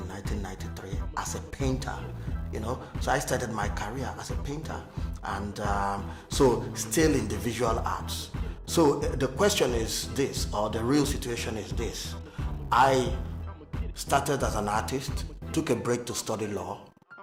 1993, as a painter. So I started my career as a painter, and so still in the visual arts. So the question is this, or the real situation is this: I started as an artist, took a break to study law,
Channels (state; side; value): identical; both; correlation 1.00